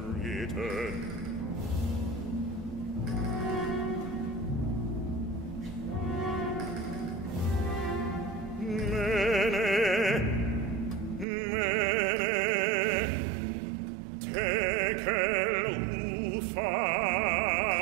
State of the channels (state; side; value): drops out; left; at 11.2 s